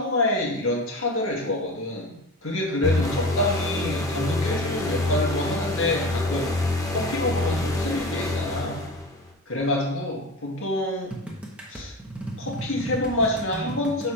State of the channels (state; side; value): normal; both; correlation 0.29